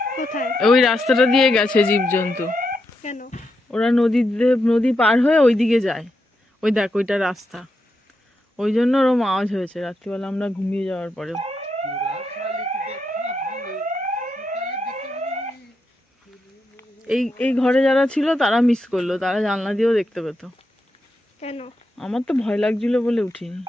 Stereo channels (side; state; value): both; normal; correlation 0.84